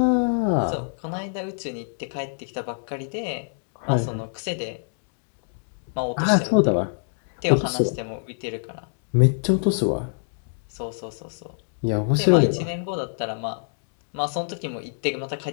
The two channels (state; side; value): silent; right; digital silence